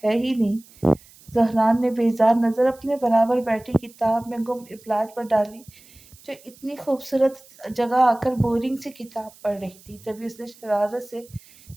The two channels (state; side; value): noise; right; hiss, 25 dB below the sound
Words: ہے ہی نہیں۔ زہران نے بیزار نظر اپنے برابر بیٹھی کتاب میں گم ابلاج پر ڈالی جو اتنی خوبصورت جگہ آ کر بورنگ سے کتاب پڑھ رہی تھی۔ تبھی اس نے شرارت سے